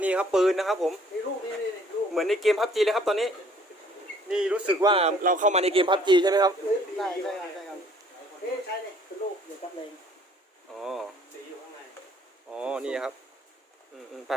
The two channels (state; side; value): normal; both; correlation 0.58